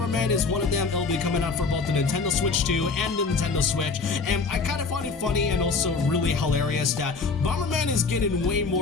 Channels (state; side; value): quieter; right; 4.5 dB